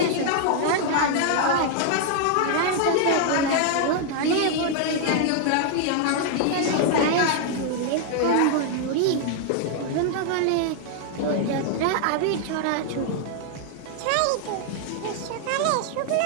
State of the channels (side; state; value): both; different; correlation 0.00